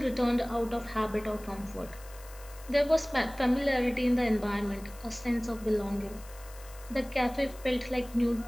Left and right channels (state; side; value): noise; left; hiss, 20 dB below the sound